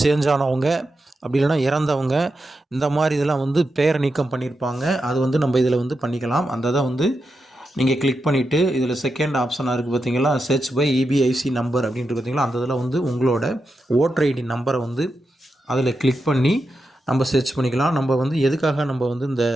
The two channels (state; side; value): normal; both; correlation 0.88